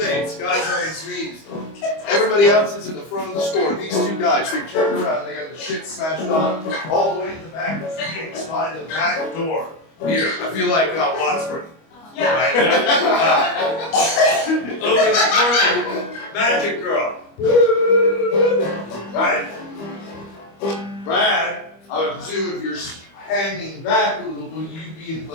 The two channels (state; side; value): late; right; 25 ms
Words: guy's on his knees. Everybody else is in the front of the store. These 2 guys, they turned around, they got the shit smashed on, all the way to the back of the gates by the back door. Here, I feel like Wadsworth. Yeah. Right? Over in the corner, Magic Girl. Right? Brad, I would presume if you're hanging back a little bit, you'd be in